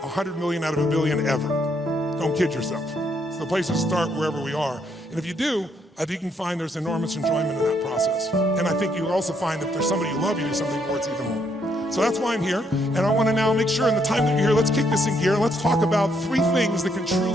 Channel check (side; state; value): both; normal; correlation 0.73